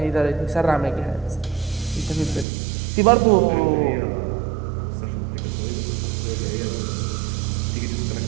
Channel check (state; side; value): drops out; left; at 2.5 s